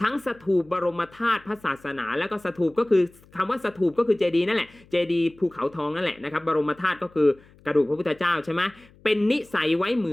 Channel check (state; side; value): noise; left; hum, 27 dB below the sound